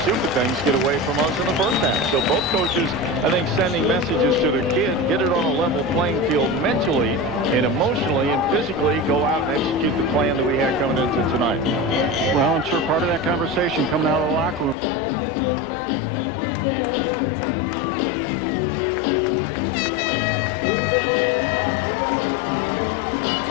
stupid things get away from us in the first half. So both coaches, I think, sending messages to their kid, get it on a level playing field mentally and emotionally and physically, go out and execute the plan that we had coming into tonight. Well, I'm sure part of that conversation coming out of the locker room or in it before they came out was, we get the ball, let's score. We got a great 2-point play, tie ball game, let's start over and win this thing.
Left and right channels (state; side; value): drops out; right; at 14.8 s